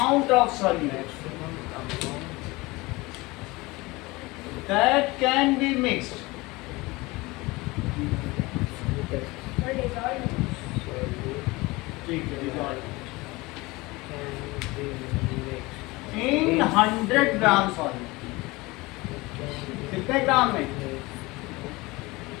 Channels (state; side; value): quieter; right; 22.4 dB